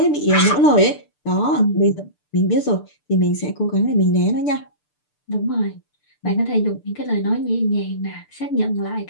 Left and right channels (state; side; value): late; right; 6.8 ms